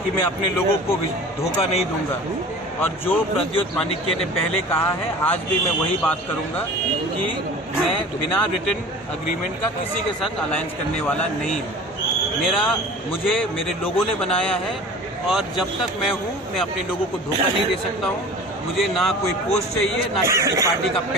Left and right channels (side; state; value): both; normal; correlation 0.40